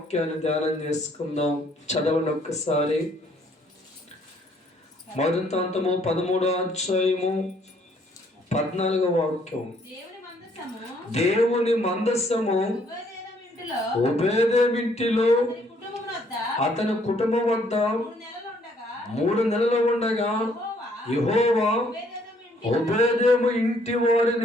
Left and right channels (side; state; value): both; normal; correlation 0.65